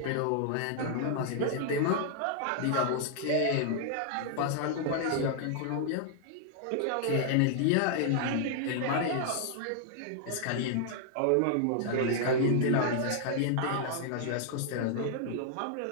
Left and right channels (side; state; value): both; different; correlation -0.01